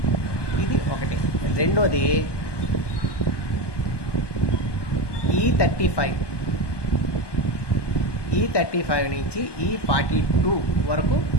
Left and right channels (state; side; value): late; right; 1.2 ms